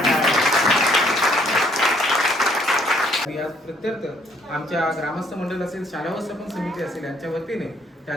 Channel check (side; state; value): both; normal; correlation 0.65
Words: या प्रत्यर्थ आमच्या ग्रामस्थ मंडळ असेल, शाळा व्यवस्थापन समिती असेल, यांच्या वतीने